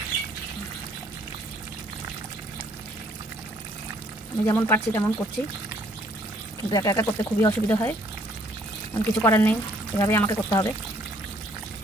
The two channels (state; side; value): normal; both; correlation 0.63